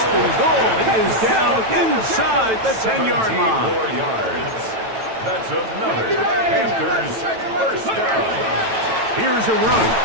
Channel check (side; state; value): left; late; 9.1 ms